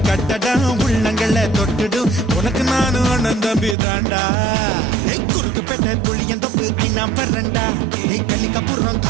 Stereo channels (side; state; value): left; drops out; at 3.8 s